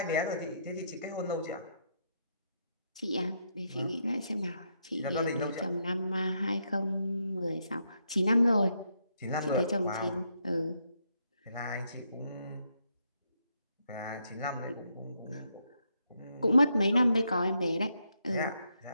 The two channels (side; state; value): both; inverted; correlation -0.78